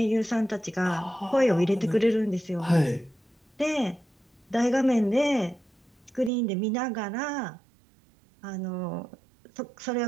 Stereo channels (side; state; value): left; drops out; at 6.3 s